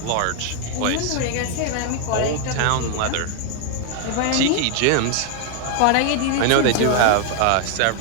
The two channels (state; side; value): different; both; correlation 0.00